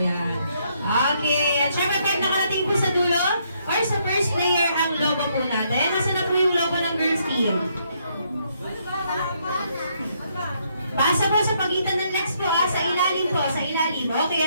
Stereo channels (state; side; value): inverted; both; correlation -0.72